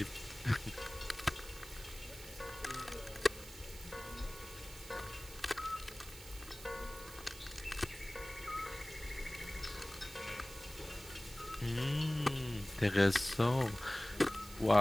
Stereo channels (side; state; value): right; noise; hiss, 15 dB below the sound